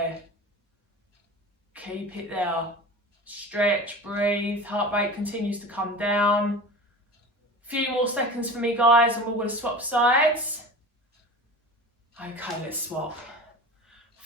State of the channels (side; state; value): both; normal; correlation 0.34